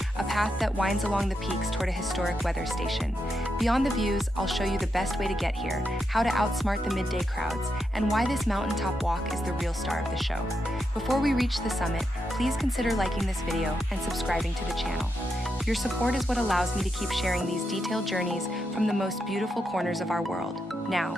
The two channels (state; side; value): normal; both; correlation 0.84